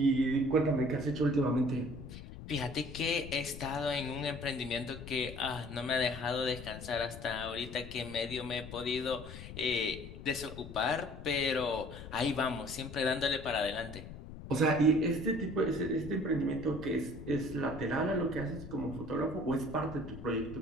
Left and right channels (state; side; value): noise; left; rumble, 12 dB below the sound